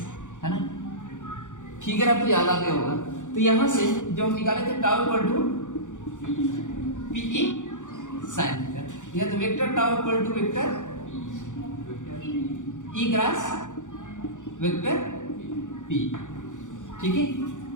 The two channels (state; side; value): late; right; 0.86 ms